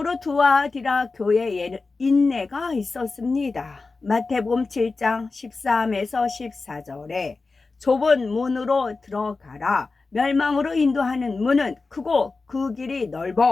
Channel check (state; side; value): quieter; right; 3.9 dB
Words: 두아디라 교회에는 인내가 있었습니다. 마태복음 7장 13에서 14절에 좁은 문으로 들어가라. 멸망으로 인도하는 문은 크고 그 길이